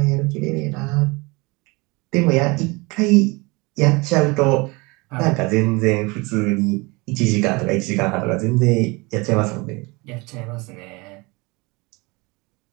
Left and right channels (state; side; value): quieter; left; 25.7 dB